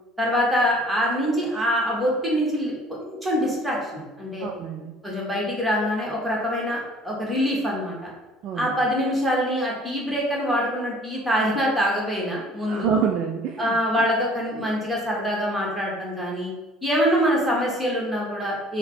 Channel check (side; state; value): both; normal; correlation 0.53